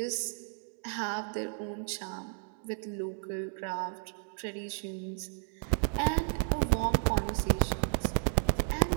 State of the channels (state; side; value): silent; left; digital silence